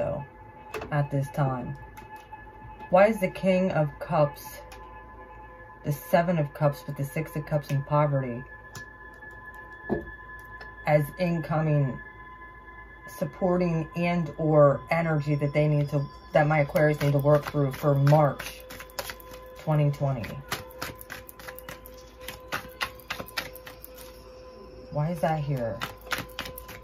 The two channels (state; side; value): identical; both; correlation 1.00